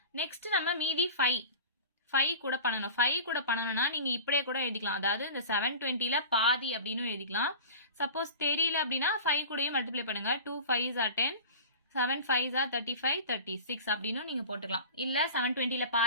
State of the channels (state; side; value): inverted; both; correlation -0.36